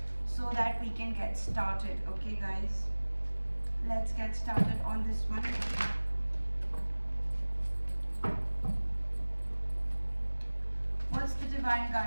so that we can get started. Okay, guys, let's get started on this one. What's the divine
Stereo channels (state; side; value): inverted; both; correlation -1.00